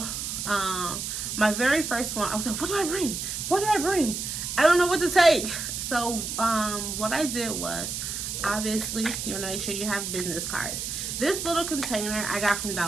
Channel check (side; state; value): right; noise; hiss, 4 dB below the sound